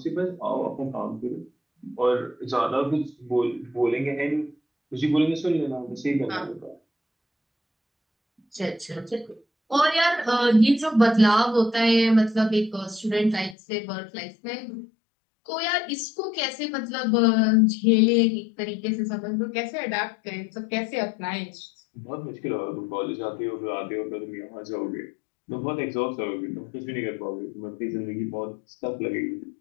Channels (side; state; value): right; drops out; at 13.6 s